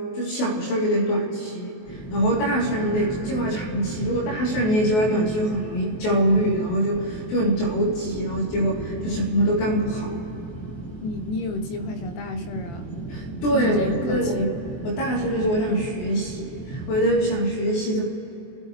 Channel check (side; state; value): right; late; 23 ms